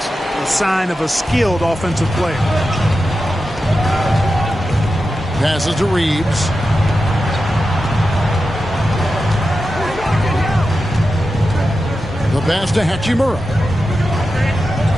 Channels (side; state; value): both; normal; correlation 0.91